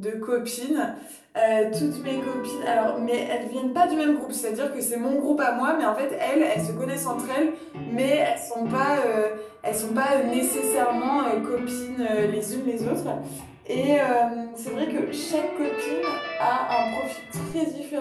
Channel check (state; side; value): identical; both; correlation 1.00